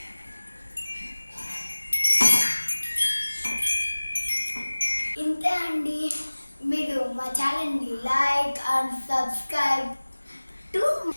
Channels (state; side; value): inverted; both; correlation -1.00